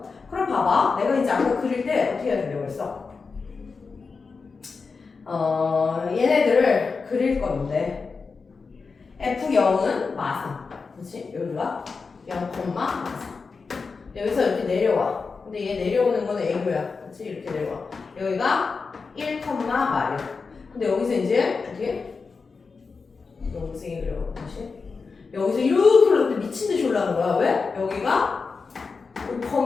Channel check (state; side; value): quieter; right; 4.7 dB